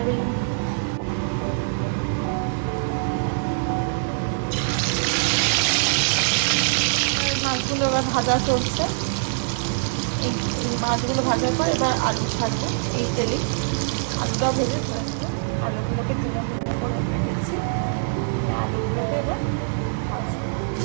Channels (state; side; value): silent; left; digital silence